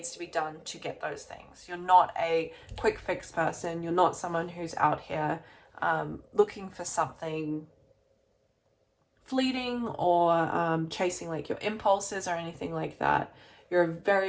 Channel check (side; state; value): both; identical; correlation 1.00